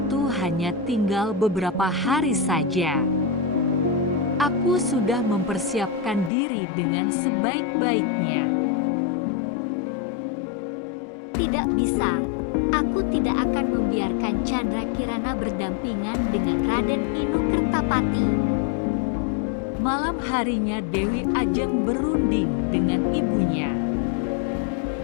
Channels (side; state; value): right; drops out; at 6.3 s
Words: hanya tinggal beberapa hari saja. Aku sudah mempersiapkan diri dengan sebaik-baiknya. Tidak bisa. Aku tidak akan membiarkan Candrakirana berdampingan dengan Raden Nukertapati. Malam harinya Dewi Ajeng berunding dengan ibunya.